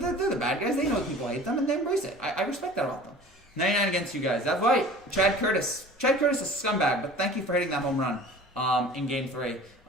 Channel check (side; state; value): both; normal; correlation 0.43